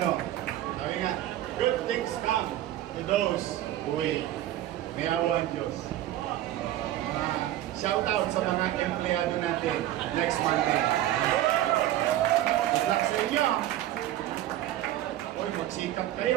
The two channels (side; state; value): left; quieter; 13.5 dB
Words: Sabi nga, good things come to those who wait. May awa ang Diyos. Shout out sa mga empleyado natin next Monday. Good luck sa inyo. Uy, magsikap